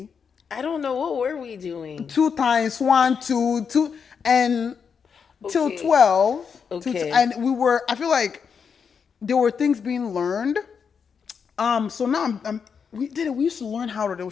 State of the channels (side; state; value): right; quieter; 6.4 dB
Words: I don't know. What were we doing? 2 times 1, 2, 2, and till 12. Okay. And I feel like there were things being learned. So now we used to learn how they'll